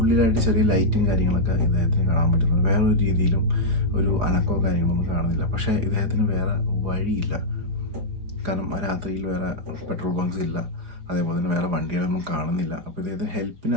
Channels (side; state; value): left; late; 4.8 ms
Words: ചെറിയ ലൈറ്റും കാര്യങ്ങളൊക്കെ ഇദ്ദേഹത്തിന് കാണാൻ പറ്റുന്നുണ്ട്. വേറൊരു രീതിയിലും ഒരു അനക്കോ കാര്യങ്ങളൊന്നും കാണുന്നില്ല. പക്ഷേ ഇദ്ദേഹത്തിന് വേറെ വഴിയില്ല. കാരണം ആ രാത്രിയിൽ വേറെ പെട്രോൾ ബങ്ക്സ് ഇല്ല, അതേപോലെ തന്നെ വേറെ വണ്ടികളൊന്നും കാണുന്നില്ല. അപ്പോൾ ഇദ്ദേഹത്തിന്